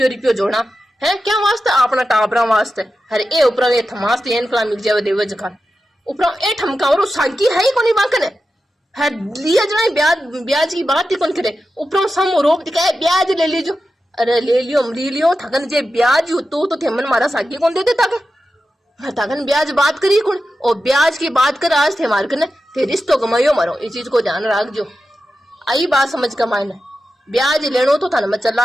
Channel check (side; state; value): both; normal; correlation 0.91